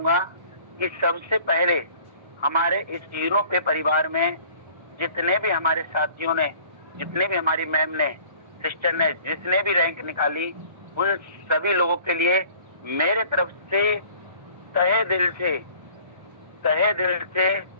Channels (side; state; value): left; late; 1.3 ms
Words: कि सबसे पहले हमारे इस यूरोपीय परिवार में जितने भी हमारे साथियों ने, जितने भी हमारी मैम ने, सिस्टर ने, जिसने भी रैंक निकाली, उन सभी लोगों के लिए मेरे तरफ से तहे दिल से